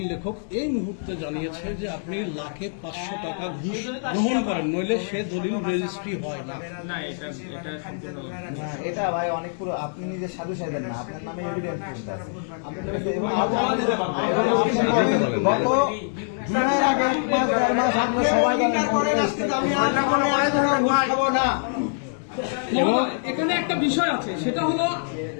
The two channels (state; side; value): silent; right; digital silence